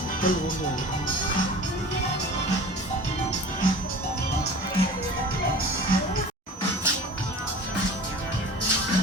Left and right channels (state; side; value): normal; both; correlation 0.39